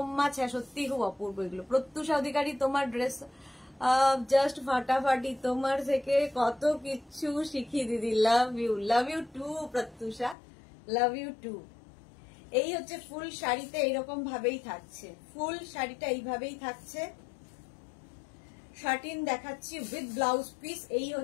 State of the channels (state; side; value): drops out; right; at 10.4 s